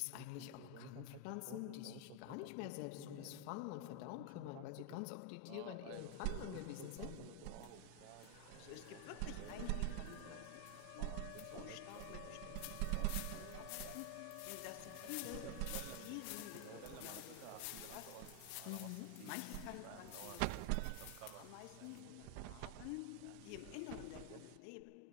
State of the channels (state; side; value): different; both; correlation 0.00